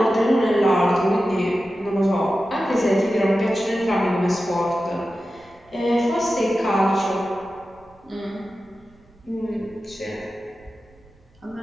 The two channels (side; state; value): right; noise; rumble, 29 dB below the sound